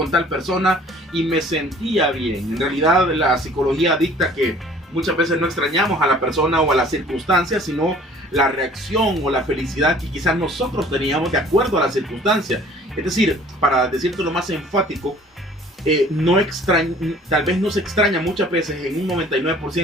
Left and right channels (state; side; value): normal; both; correlation 0.51